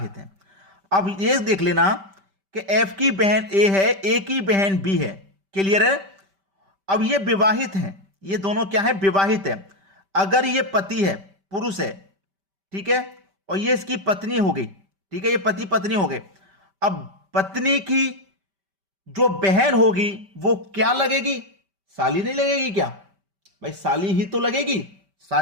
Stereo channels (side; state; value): left; late; 5.1 ms